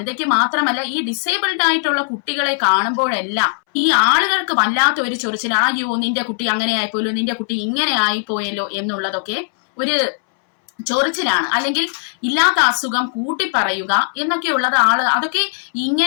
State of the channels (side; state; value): right; silent; 67 dB below the other